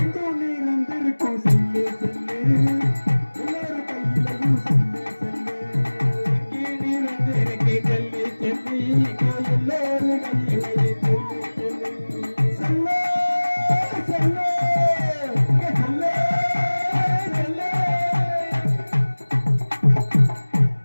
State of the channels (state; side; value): inverted; both; correlation -1.00